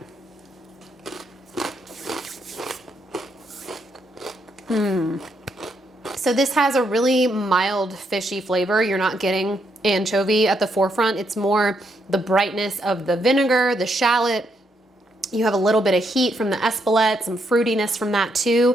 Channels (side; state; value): both; normal; correlation 0.77